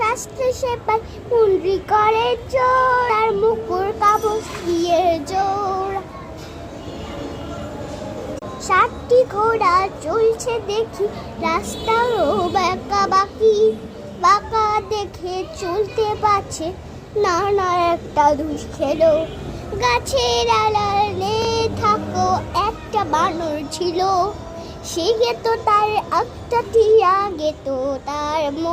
সেপাই, মুন্ডি করে জোর, আর মুকুর কাবস দিয়ে জোর। 7টি ঘোড়া চলছে দেখি, রাস্তারও বাঁকা বাকি। বাঁকা দেখে চলতে পারছে না, না একটা দুষ খেলো। গাছের আড়ালে থাকো একটা বানর ছিল, সে গেত তার একটা টিয়া গেত তার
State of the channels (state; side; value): identical; both; correlation 1.00